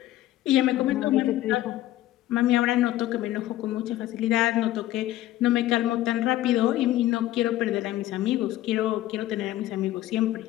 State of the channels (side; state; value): right; quieter; 14.6 dB